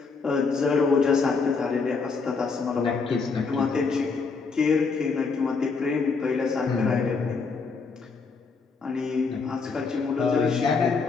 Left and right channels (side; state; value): right; quieter; 4.7 dB